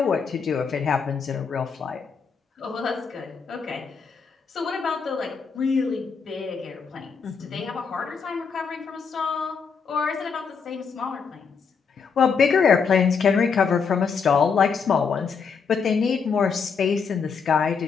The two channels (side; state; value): right; quieter; 5.8 dB